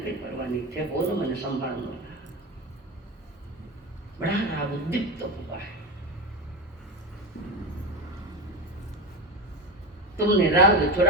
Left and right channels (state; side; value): normal; both; correlation 0.20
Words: परवाह नहीं थे, वो ना मैंने संभालना। बड़ा राग उद्दीप्त हुआ है। तुमने राग